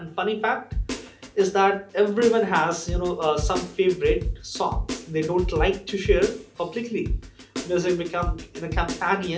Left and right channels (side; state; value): both; identical; correlation 1.00